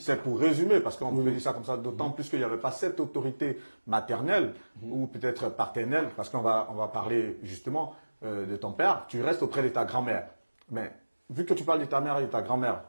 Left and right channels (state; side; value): inverted; both; correlation -1.00